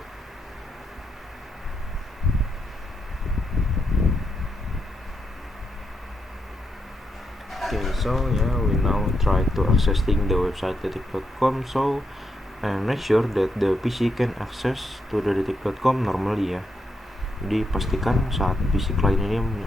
Okay, so yeah, we now try to accessing the website detik.com. So and make sure that the PC can access to the detik.com normally ya. Jadi pastikan saat PC client ini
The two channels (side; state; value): both; normal; correlation 0.81